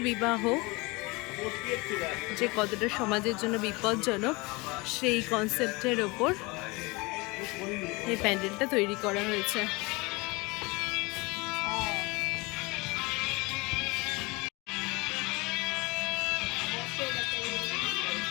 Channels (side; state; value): right; quieter; 25.3 dB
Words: বিবাহ যে কতটা সমাজের জন্য বিপজ্জনক, সেই কনসেপ্টের ওপর এই প্যান্ডেলটা তৈরি করা হয়েছে।